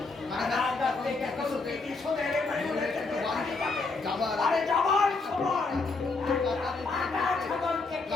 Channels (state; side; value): quieter; right; 3.8 dB